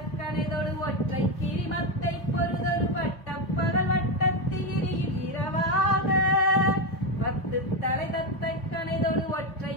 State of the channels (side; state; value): right; late; 3.8 ms